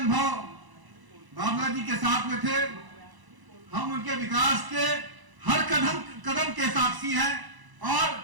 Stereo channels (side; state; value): left; late; 1.0 ms